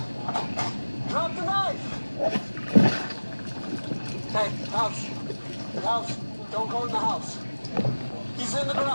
Drop the knife! Hey, house. House. Don't go in the house. He's in the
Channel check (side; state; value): both; inverted; correlation -1.00